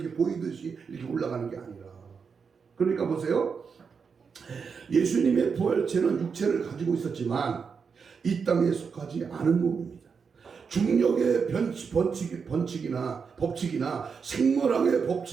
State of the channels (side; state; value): left; quieter; 5.8 dB